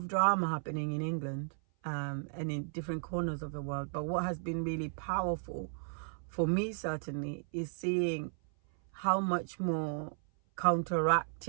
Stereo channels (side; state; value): left; silent; 55 dB below the other